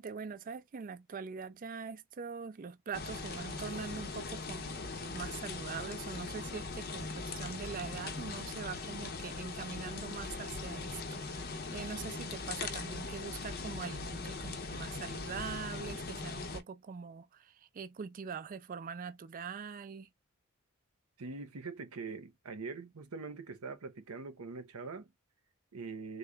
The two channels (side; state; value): both; normal; correlation 0.21